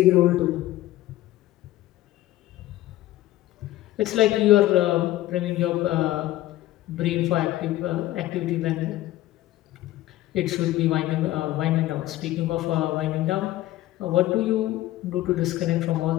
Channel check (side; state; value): right; quieter; 15.5 dB